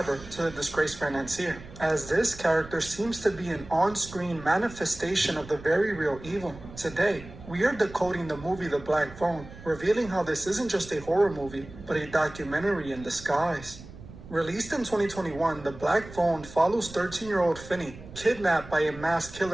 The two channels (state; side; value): noise; right; rumble, 16 dB below the sound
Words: to the disgraced financier, as this character seems to be an on-screen manifestation of the very real evil. Today, we are decoding the movie The Black Phone, revealing how this isn't just a horror movie, but a documentary in disguise. Released in 2021, The Black Phone follows 13-year-old Finney, kidnapped by a masked